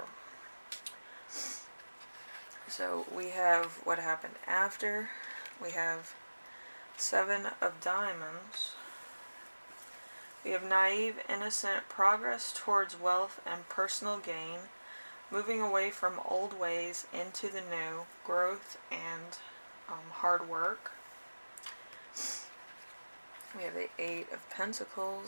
So we have what happened after. We have 7 of Diamonds. We have naive, innocent progress towards wealth and personal gain, moving away from old ways into the new, growth and hard work. We have the 8 of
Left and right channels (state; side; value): inverted; both; correlation -1.00